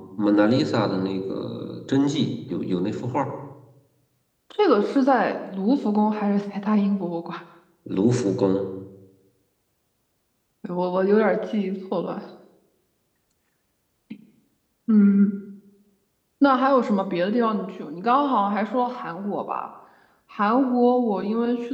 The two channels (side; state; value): both; identical; correlation 1.00